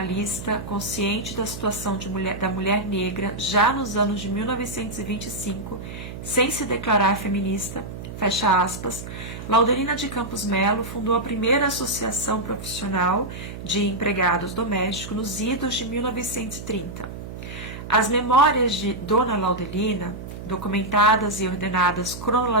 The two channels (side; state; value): right; noise; hum, 10 dB below the sound